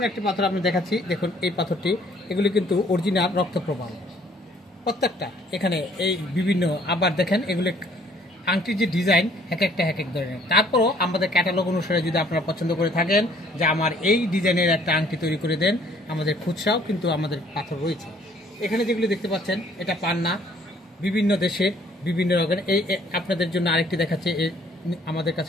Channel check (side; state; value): both; normal; correlation 0.60